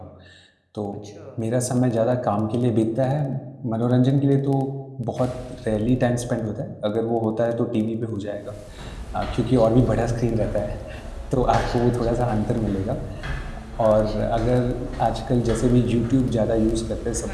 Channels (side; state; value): both; identical; correlation 1.00